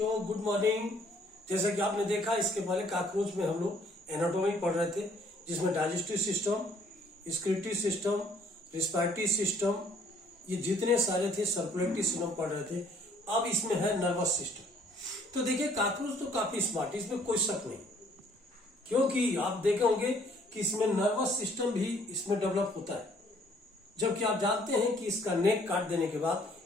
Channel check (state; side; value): normal; both; correlation 0.61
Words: good morning. जैसा कि आपने देखा इसके पहले कॉकरोच में हम लोग एनाटॉमी पढ़ रहे थे, जिसमें digestive system, scriptive system, respiratory system, ये जितने सारे थे सर्कुलेटरी सिस्टम पढ़ रहे थे। अब इसमें है नर्वस सिस्टम। तो देखिए कॉकरोच तो काफी स्मार्ट है, इसमें कोई शक नहीं, क्योंकि आप देखे होंगे कि इसमें नर्वस सिस्टम भी इसमें डेवलप होता है। जबकि आप जानते हैं कि इसका नेक काट देने के